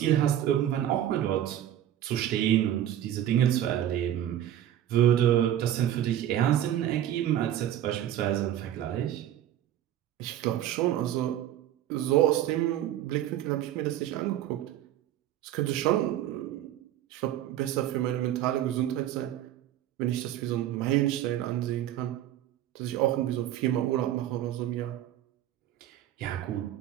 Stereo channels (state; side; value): quieter; left; 11.8 dB